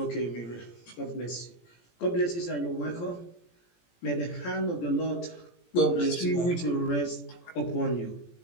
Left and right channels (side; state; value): right; late; 17 ms